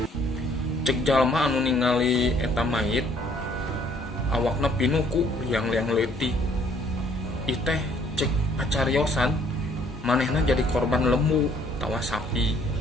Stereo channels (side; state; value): both; normal; correlation 0.62